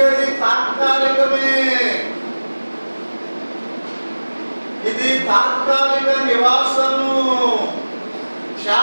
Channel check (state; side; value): inverted; both; correlation -1.00